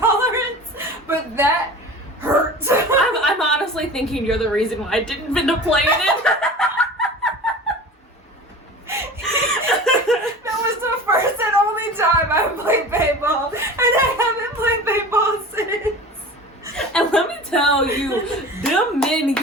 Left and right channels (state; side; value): normal; both; correlation 0.37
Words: but that hurt. I'm honestly thinking you're the reason why I didn't end up playing it. That was the first and only time I played paintball, and I haven't played paintball since. And let me tell you, them men